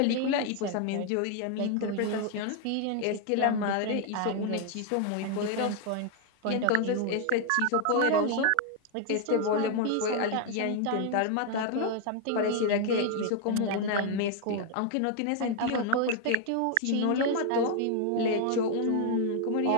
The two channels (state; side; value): different; both; correlation 0.00